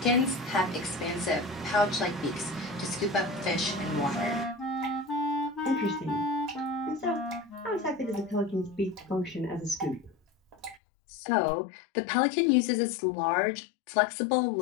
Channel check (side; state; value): right; drops out; at 10.8 s